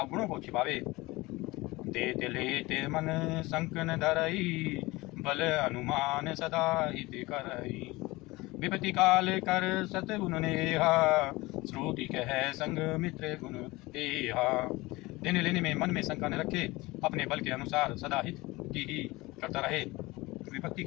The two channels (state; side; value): quieter; right; 21.3 dB